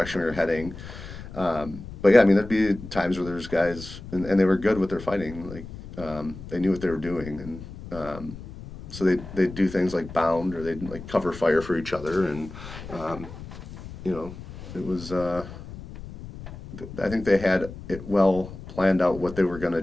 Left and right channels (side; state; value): left; noise; rumble, 13 dB below the sound